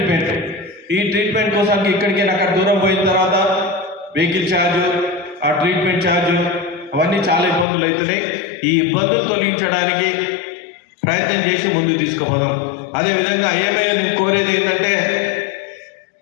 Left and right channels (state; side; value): drops out; right; at 7.7 s